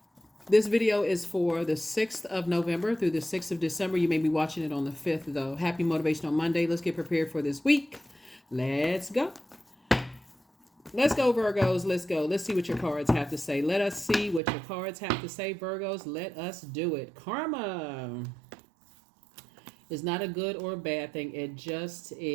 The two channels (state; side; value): drops out; left; at 14.4 s